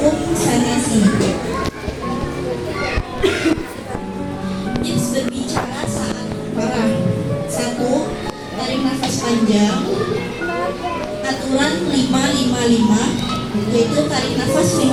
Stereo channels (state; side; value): identical; both; correlation 1.00